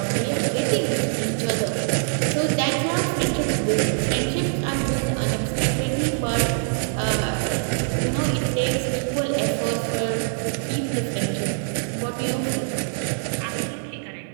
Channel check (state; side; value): silent; left; digital silence